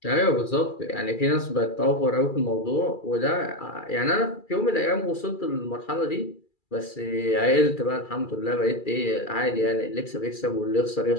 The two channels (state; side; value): late; right; 2.3 ms